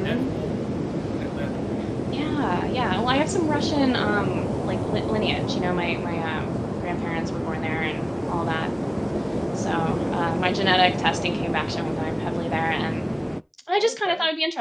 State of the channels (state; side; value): identical; both; correlation 1.00